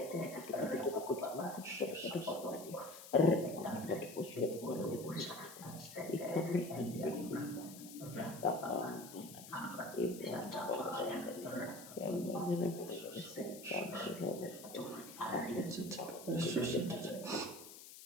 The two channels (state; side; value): noise; left; hiss, 15 dB below the sound